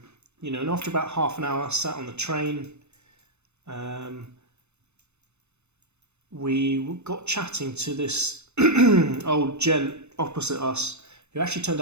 And after about half an hour, sat on the train, we got chatting to this old gent opposite us, who actually turned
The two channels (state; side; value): late; left; 0.81 ms